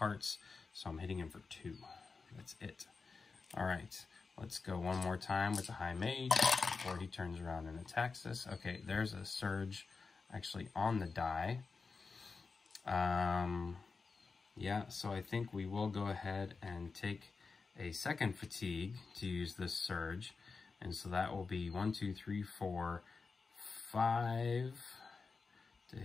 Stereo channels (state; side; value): quieter; right; 4.6 dB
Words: So I'm hitting him for 2. That's it. All right, let's go one more time with the High Mage before he turns around and attacks us. Okay, there's a surge actually on the die. Yeah, so I think we will go ahead and take a second fatigue to use this surge. And so that will be 1, 2, 3, 4, 5 to